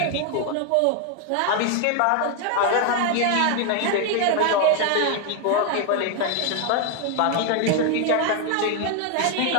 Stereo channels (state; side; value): different; both; correlation 0.01